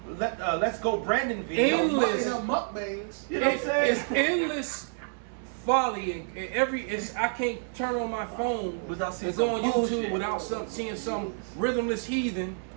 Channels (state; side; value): silent; left; digital silence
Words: Let's Go Brandon videos. Endless. Mukbangs. You know what I'm saying? It's endless folly and I can't turn on my phone Without seeing and go on some YouTube bullshit. without seeing some rhythmless heathen,